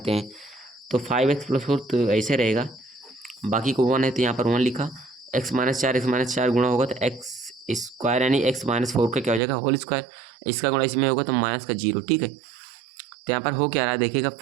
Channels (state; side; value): drops out; left; at 9.4 s